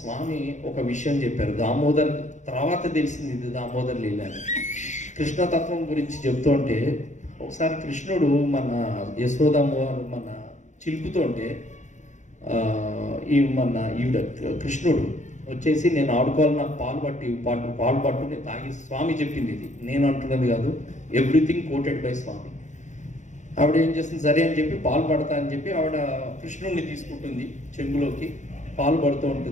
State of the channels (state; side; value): late; right; 0.35 ms